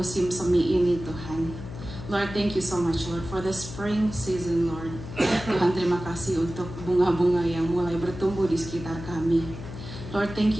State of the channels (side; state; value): left; noise; hum, 11 dB below the sound